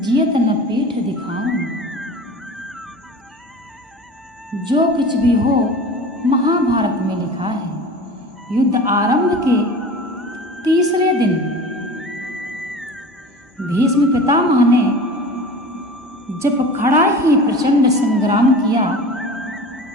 न पीठ दिखाऊं। जो कुछ भी हो महाभारत में लिखा है। युद्ध आरंभ के तीसरे दिन भीष्म पितामह ने जब खड़ा ही प्रचंड संग्राम किया,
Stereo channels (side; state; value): both; normal; correlation 0.37